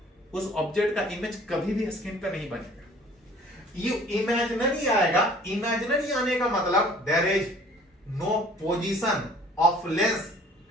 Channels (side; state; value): both; normal; correlation 0.53